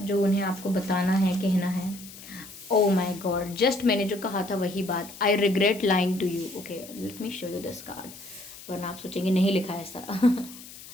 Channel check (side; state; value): left; noise; hiss, 16 dB below the sound